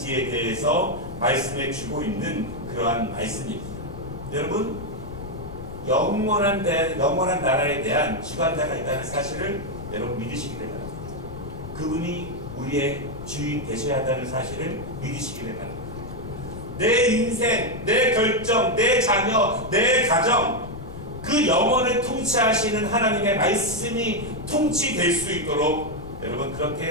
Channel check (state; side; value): noise; left; rumble, 11 dB below the sound